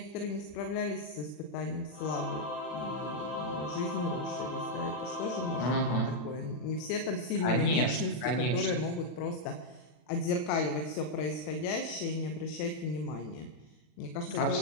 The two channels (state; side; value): late; right; 40 ms